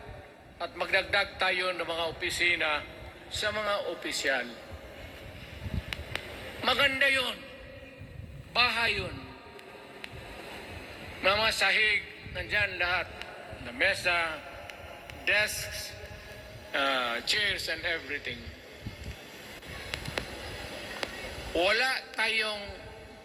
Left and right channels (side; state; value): both; identical; correlation 1.00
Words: at magdagdag tayo ng mga opisina sa mga opisyal. Maganda yun. Bahay yun. Mga sahig, nandyan lahat. Na mesa, desks, chairs and everything. Wala tayong